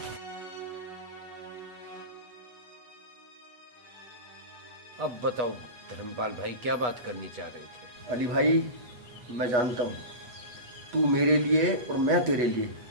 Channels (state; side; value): late; left; 8.2 ms